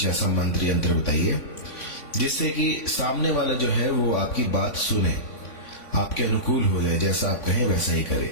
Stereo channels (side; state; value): right; late; 3.5 ms